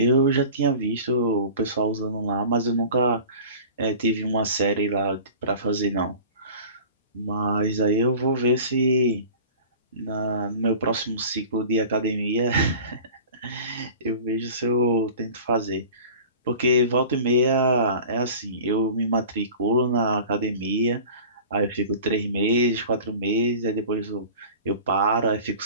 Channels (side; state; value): both; inverted; correlation -0.42